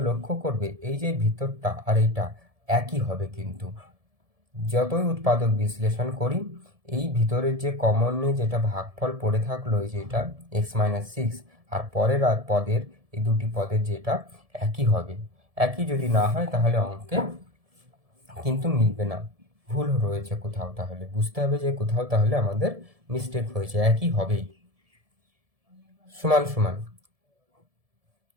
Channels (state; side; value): late; left; 1.7 ms